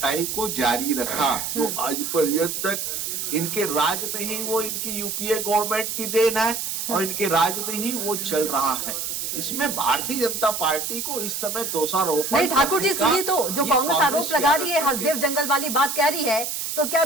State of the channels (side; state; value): right; noise; hiss, 3 dB below the sound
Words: को जारी रखा। तो आज पर्यंत तक इनके राज में ही वो इनकी यूपीए गवर्नमेंट की देन है और इनके राज में ही वो चल रहा है। इसमें भारतीय जनता पार्टी को इस समय दोषारोपण नहीं ठाकुर जी करने का सुनिए, तो जो ये कांग्रेस आरोप की लगा रही है, आदत हसदेव जंगल वाली बात कह रही है, तो क्या